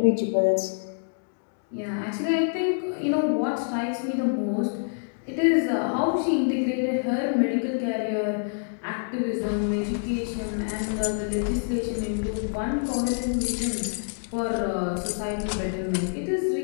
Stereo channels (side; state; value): right; silent; digital silence